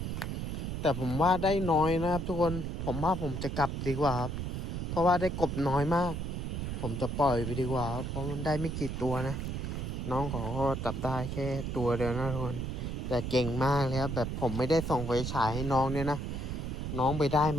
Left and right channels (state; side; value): noise; right; rumble, 3 dB below the sound